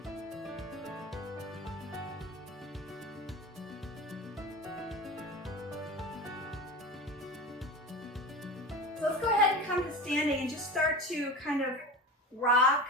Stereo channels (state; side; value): normal; both; correlation 0.29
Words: So let's go ahead and come to standing and just start to kind of rock